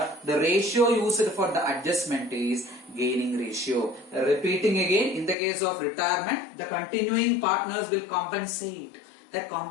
the ratio used for the adjustment is gaining ratio. Repeating again, in the case of retirement, the continuing partners will compensate. That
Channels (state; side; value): drops out; right; at 5.4 s